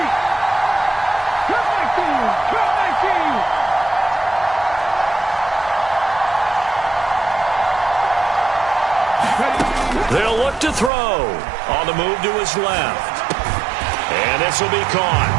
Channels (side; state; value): left; drops out; at 10.9 s